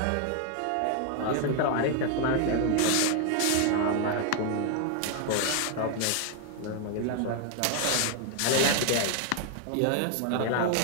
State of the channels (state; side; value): different; both; correlation 0.00